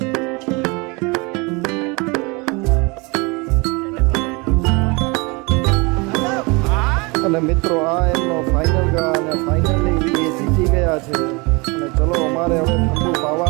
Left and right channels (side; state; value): left; quieter; 27.7 dB